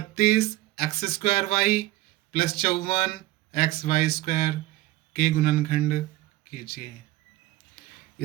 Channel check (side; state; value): left; quieter; 17.2 dB